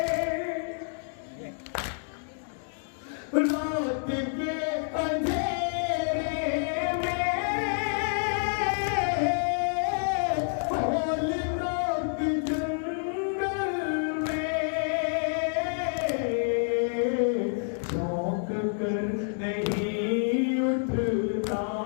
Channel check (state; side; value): silent; right; digital silence